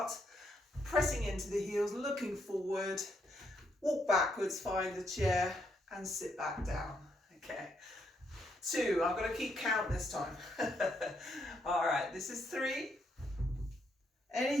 pressing into the heels, looking forward, walk backwards, find the chair, and sit back down. Okay. 2, I'm going to keep count this time. All right, this is 3.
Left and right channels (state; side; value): normal; both; correlation 0.76